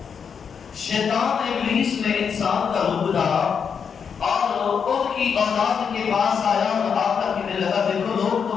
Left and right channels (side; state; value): right; quieter; 6.7 dB